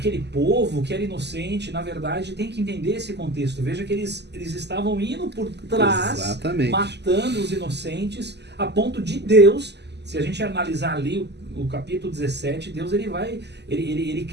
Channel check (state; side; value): late; left; 0.50 ms